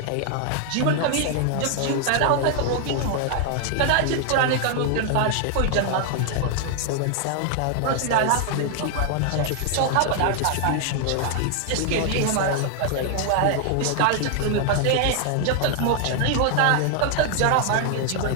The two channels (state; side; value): different; both; correlation 0.00